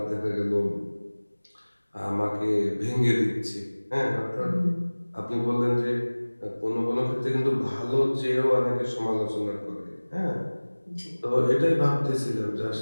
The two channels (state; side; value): inverted; both; correlation -1.00